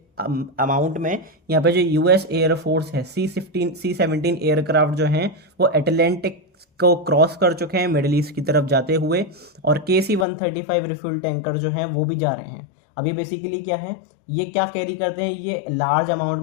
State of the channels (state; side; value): drops out; right; at 10.2 s